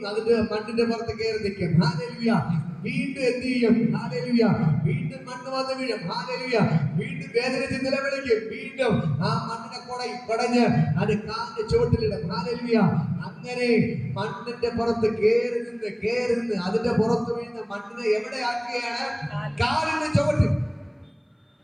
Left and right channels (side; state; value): both; identical; correlation 1.00